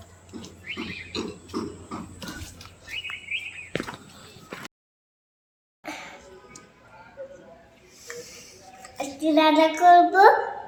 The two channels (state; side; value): identical; both; correlation 1.00